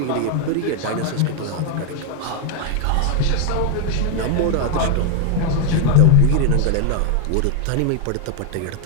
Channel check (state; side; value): different; both; correlation 0.00